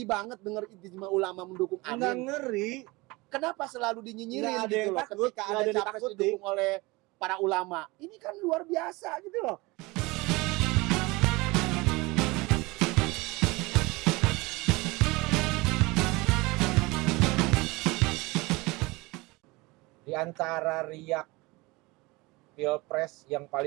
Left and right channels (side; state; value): left; quieter; 23.4 dB